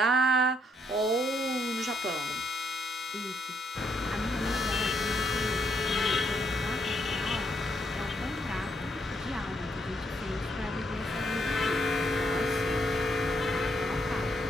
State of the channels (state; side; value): normal; both; correlation 0.74